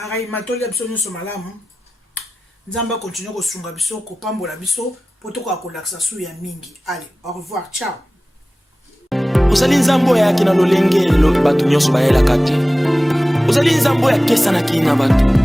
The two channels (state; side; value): normal; both; correlation 0.96